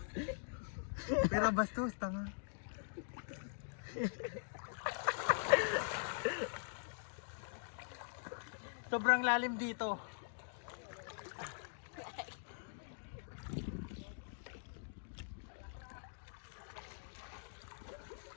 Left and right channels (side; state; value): right; silent; digital silence